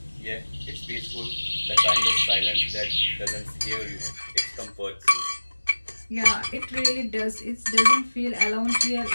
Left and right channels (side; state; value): both; inverted; correlation -1.00